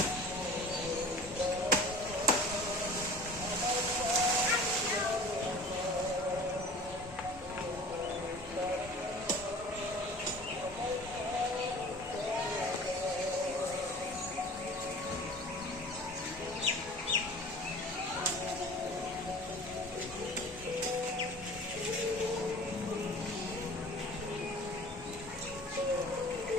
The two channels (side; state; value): both; normal; correlation 0.42